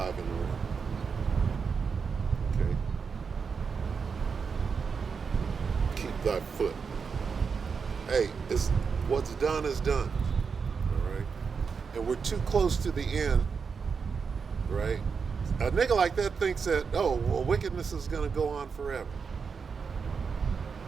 in the room. Okay? Keep thy foot. Hey, what's done is done. All right? And we're too close to the end. Right? A nigga like that thinks that, oh, well, wickedness is going to go on forever.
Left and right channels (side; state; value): left; quieter; 5.6 dB